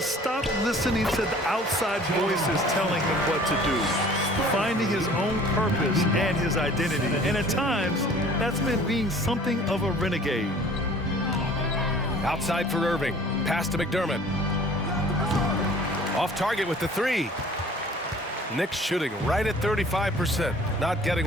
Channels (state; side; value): normal; both; correlation 0.50